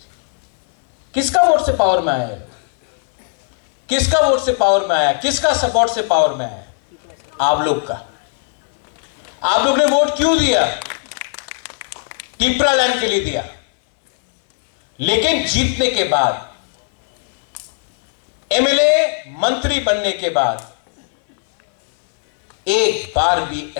किसका वोट से पावर में आया है? किसका वोट से पावर में आया? किसका सपोर्ट से पावर में आया? आप लोग का। आप लोग ने वोट क्यों दिया? टिपरालैंड के लिए दिया। लेकिन जीतने के बाद, एमएलए मंत्री बनने के बाद एक बार भी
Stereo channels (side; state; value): right; silent; 66 dB below the other